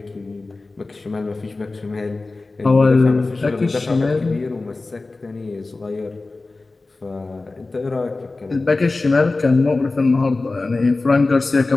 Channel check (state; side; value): quieter; right; 3.4 dB